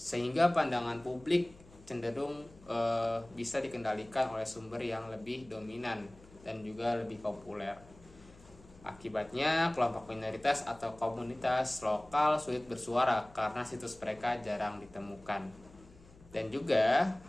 pandangan publik cenderung bisa dikendalikan oleh sumber yang lebih dominan dan juga lebih populer. Akibatnya, kelompok minoritas atau komunitas lokal sulit bersuara karena situs mereka jarang ditemukan. Dan juga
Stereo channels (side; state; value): left; noise; hum, 23 dB below the sound